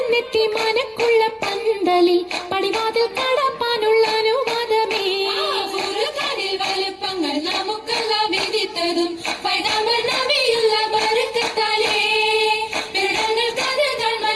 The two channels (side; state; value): both; identical; correlation 1.00